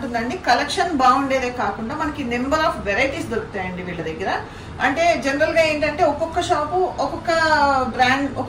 కలెక్షన్ బాగుండేదే కాకుండా మనకి నెంబర్ ఆఫ్ వెరైటీస్ దొరుకుతాయండి వీళ్ళ దగ్గర. అంటే జనరల్ గా ఏంటంటే ఒక్కొక్క షాపు ఒక్కొక్క బ్రాండ్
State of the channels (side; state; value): both; identical; correlation 1.00